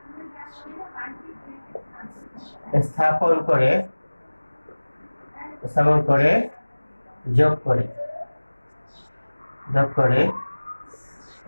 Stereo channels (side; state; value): both; inverted; correlation -1.00